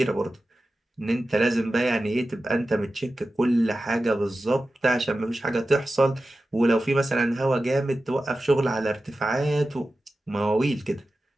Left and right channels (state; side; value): normal; both; correlation 0.94